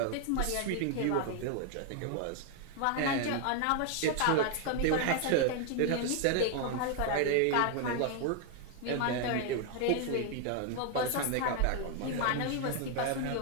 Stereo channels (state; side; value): different; both; correlation 0.00